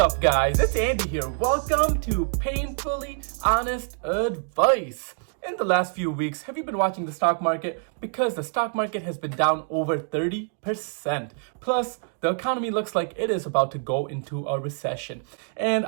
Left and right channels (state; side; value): silent; left; 57 dB below the other